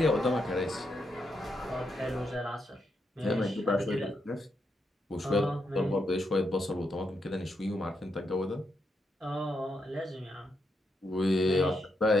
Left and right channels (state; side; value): normal; both; correlation 0.81